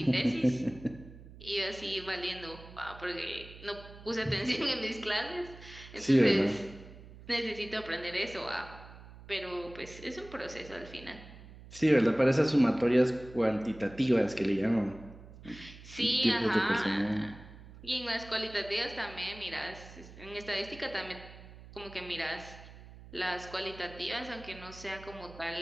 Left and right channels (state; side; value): noise; right; hum, 17 dB below the sound